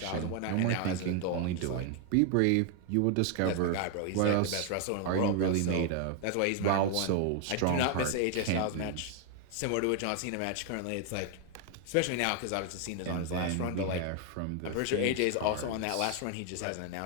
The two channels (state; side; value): different; both; correlation 0.00